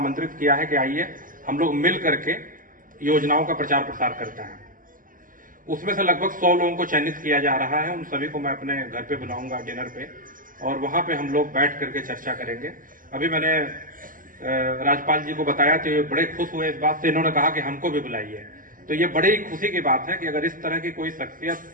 किया है कि आइए हम लोग मिल करके योजनाओं का प्रचार प्रसार करते हैं। उसमें से लगभग 100 लोगों को चयनित किया जा रहा है। उन सभी को मैं अपने घर पे बुलाऊंगा डिनर पे, और वहां पे हम लोग बैठ करके चर्चा करेंगे। अभी मैंने राजपाल जी को बताया तो ये बड़े खुश हुए इस बात से, इन्होंने कहा कि हमको भी बुलाइए। तो ये बड़ी ही खुशी की बात है कि अगर इस तरह की कोई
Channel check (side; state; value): left; late; 0.40 ms